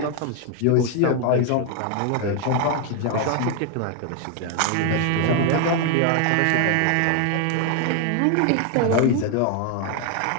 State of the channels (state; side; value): different; both; correlation 0.00